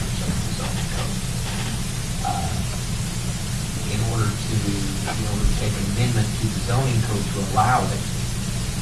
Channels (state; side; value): identical; both; correlation 1.00